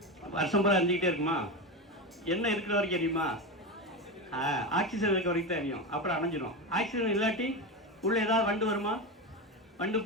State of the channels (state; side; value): normal; both; correlation 0.18